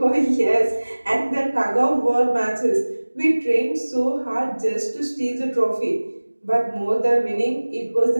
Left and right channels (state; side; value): inverted; both; correlation -1.00